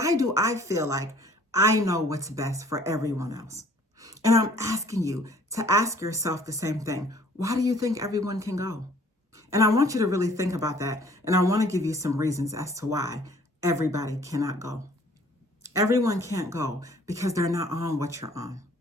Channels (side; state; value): both; normal; correlation 0.56